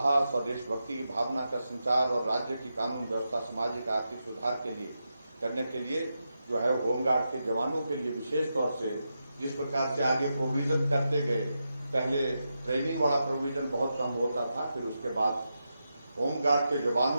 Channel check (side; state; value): both; inverted; correlation -0.88